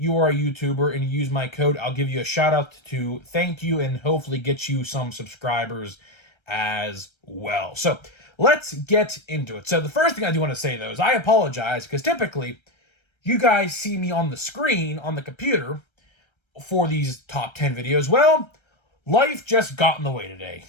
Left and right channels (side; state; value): right; late; 1.3 ms